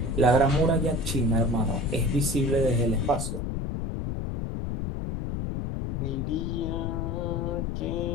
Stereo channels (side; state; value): left; noise; rumble, 2 dB below the sound